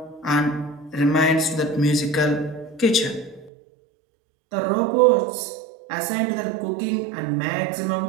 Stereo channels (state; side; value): drops out; left; at 3.5 s